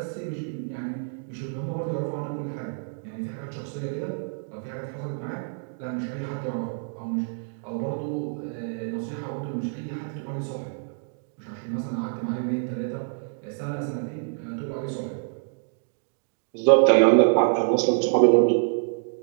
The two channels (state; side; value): silent; left; digital silence